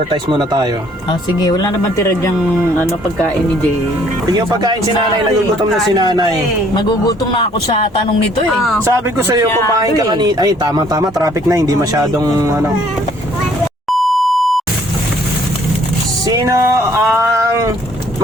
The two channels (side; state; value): both; normal; correlation 0.61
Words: muna tayo. Sige, wala naman tira dyang pagkain ni Jay. Yung pagkain si nanay, nagugutom na si nanay. Magugutom na ako sa tanong nito eh. Sabi ko sa iyo, kumain ka kanina. Ay, tama, traffic na, hindi masyadong Sino ang